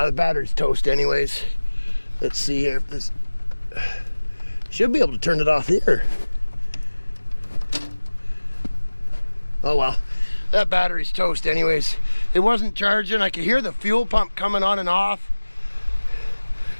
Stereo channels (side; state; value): both; inverted; correlation -1.00